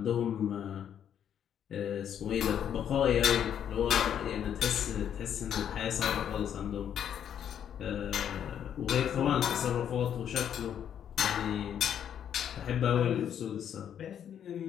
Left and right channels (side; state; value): right; quieter; 9.2 dB